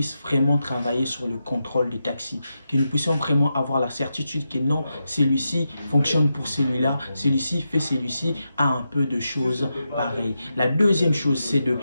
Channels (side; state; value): both; inverted; correlation -0.88